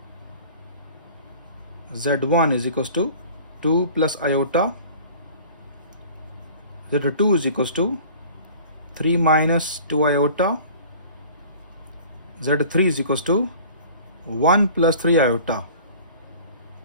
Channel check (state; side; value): inverted; both; correlation -0.46